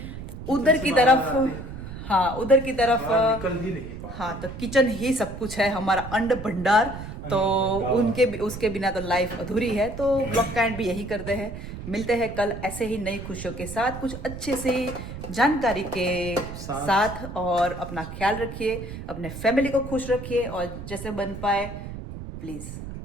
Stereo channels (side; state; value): right; noise; rumble, 10 dB below the sound